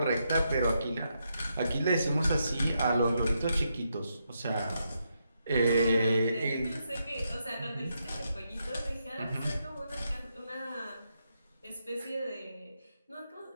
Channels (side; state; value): both; inverted; correlation -0.81